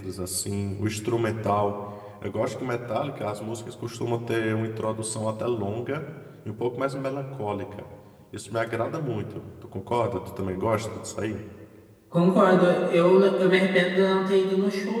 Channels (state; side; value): identical; both; correlation 1.00